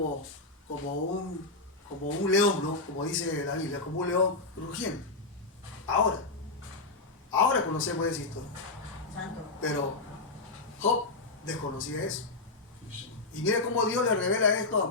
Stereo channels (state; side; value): quieter; right; 3.4 dB